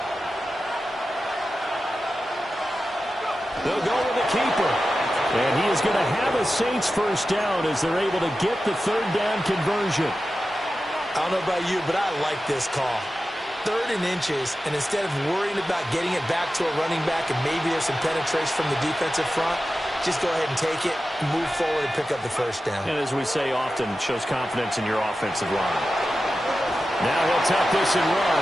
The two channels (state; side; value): normal; both; correlation 0.93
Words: They'll go with the keeper. And he is going to have a Saints first down as they're able to get the 3rd down conversion. I don't know about you, but I like this call. 3rd and inches, and instead of worrying about getting it back to a running back and maybe there's some penetration from the defensive front, just go ahead and take it. move forward and pick up the first down. And as we say often, shows confidence in your offensive line. Now he'll tuck this and